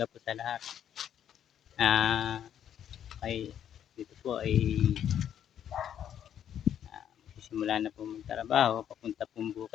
po sa lahat. Ay dito po ay magsisimula na po magtrabaho papunta pong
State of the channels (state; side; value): quieter; right; 9.7 dB